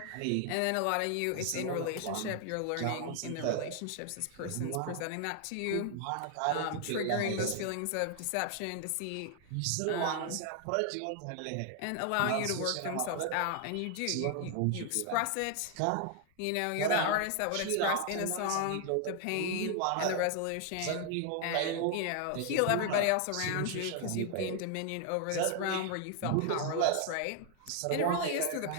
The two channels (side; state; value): both; different; correlation 0.00